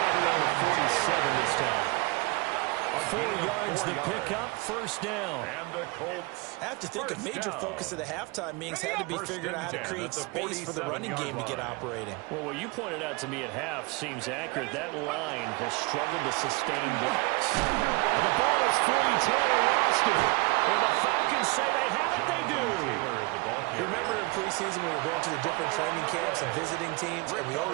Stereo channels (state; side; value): quieter; left; 26.2 dB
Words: right around the 47 this time. 4 yards the pickup, first down. And the Colts. I have to think a major focus of the halftime meetings had to be figuring out how to create space for the running game to get operating. Well, what you pointed out to me at half seems accurate. That line has struggled to sustain blocks. And the ball is free. Taylor lost it. And the Falcons say they have it. They do. You remember in preseason we were going to the different training camps and visiting teams, and we